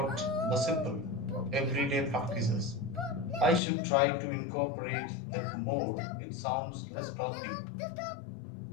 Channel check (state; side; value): drops out; right; at 3.6 s